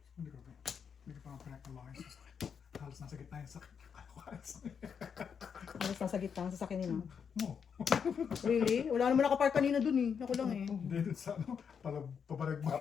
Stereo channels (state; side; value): quieter; right; 6.9 dB